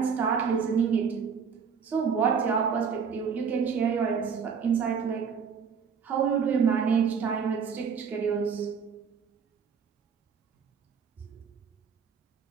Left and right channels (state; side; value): quieter; left; 6.4 dB